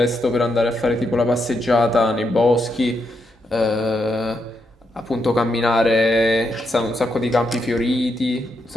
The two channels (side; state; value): both; normal; correlation 0.81